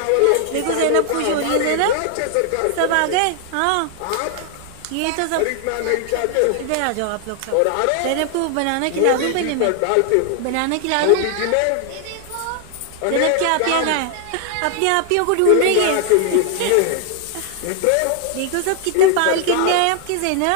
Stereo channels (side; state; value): both; different; correlation 0.00